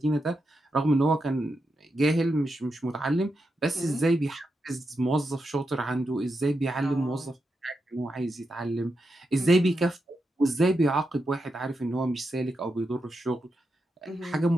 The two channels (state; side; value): normal; both; correlation 0.86